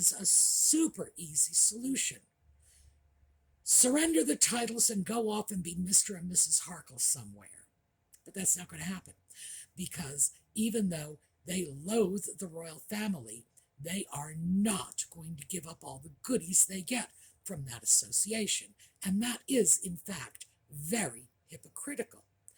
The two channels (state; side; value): identical; both; correlation 1.00